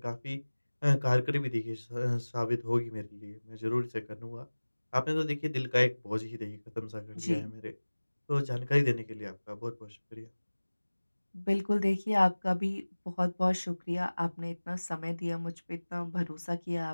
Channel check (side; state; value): both; inverted; correlation -1.00